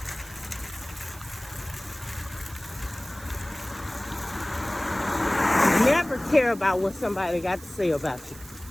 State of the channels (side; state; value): right; noise; hiss, 18 dB below the sound